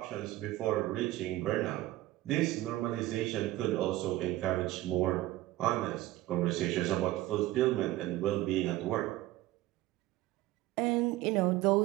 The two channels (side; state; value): left; quieter; 16.4 dB